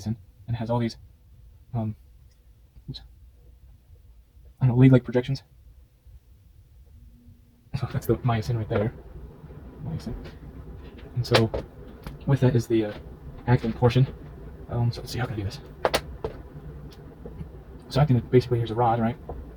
and has all these lead-like projections. So that's the myosin right there. Myosin. And so with that is the actin portion. So let's see, how can I do this? So actin, basically, here's a rod, right?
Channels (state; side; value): identical; both; correlation 1.00